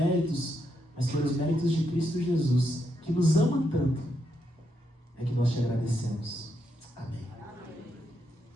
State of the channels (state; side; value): normal; both; correlation 0.80